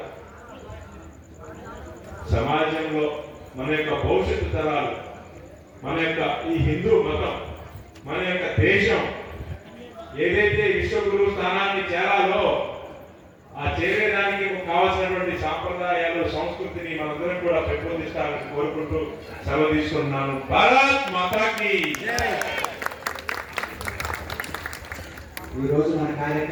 సమాజంలో మన యొక్క భవిష్యత్తు తరాలు, మన యొక్క ఈ హిందూ మతం, మన యొక్క దేశం ఏదైతే విశ్వగురు స్థానాన్ని చేరాలో ఆ చేరేదానికి కావాల్సినటువంటి సాంప్రదాయాలు, సంస్కృతిని మనందరం కూడా పెంపొందిస్తారని కోరుకుంటూ సెలవు తీసుకుంటున్నాను. భారత్ మాతాకి. ఈ రోజు మన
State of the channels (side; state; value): both; identical; correlation 1.00